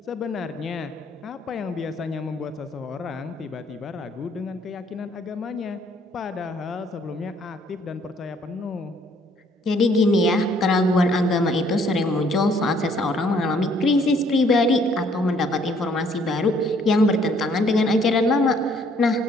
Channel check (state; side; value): normal; both; correlation 0.63